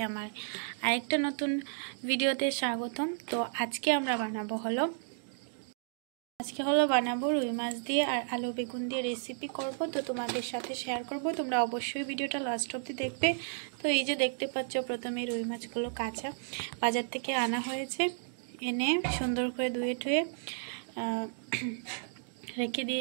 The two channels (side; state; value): left; silent; digital silence